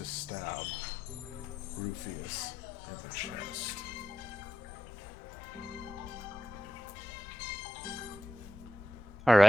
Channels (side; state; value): both; normal; correlation 0.89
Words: stab Rufius in the chest. All